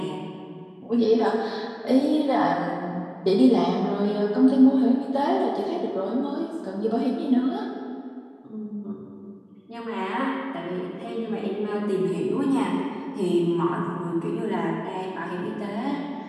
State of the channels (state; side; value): identical; both; correlation 1.00